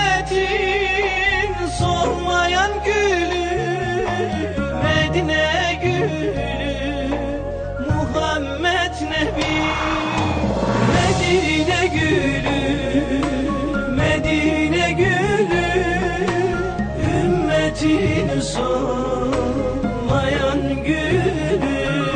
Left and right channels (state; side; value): identical; both; correlation 1.00